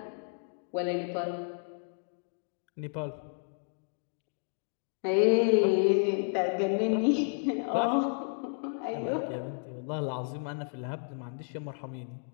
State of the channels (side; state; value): right; silent; digital silence